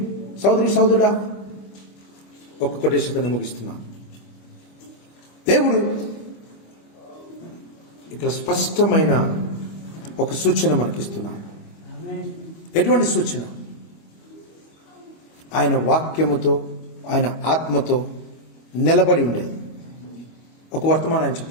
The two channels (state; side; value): late; right; 25 ms